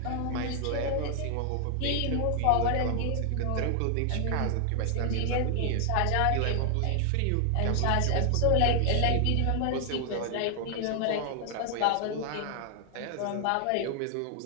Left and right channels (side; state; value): both; different; correlation 0.00